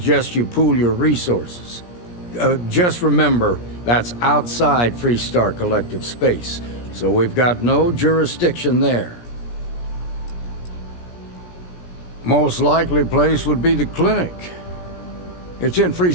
you pool your resources. Just remember, that's outside Freestar Collective space, so we've got no jurisdiction there. Most likely place would be the clinic. It's in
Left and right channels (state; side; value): late; right; 17 ms